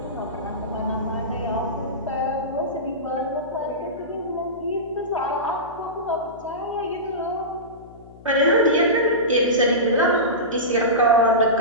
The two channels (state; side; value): noise; left; hum, 21 dB below the sound